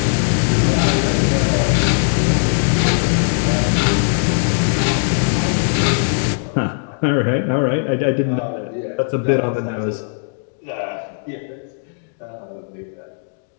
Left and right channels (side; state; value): right; silent; digital silence